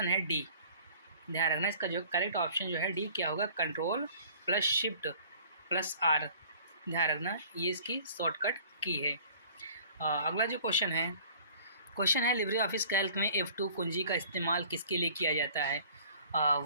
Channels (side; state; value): both; inverted; correlation -0.51